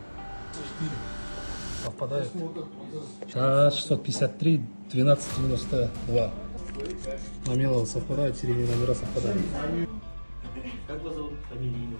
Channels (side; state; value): both; inverted; correlation -1.00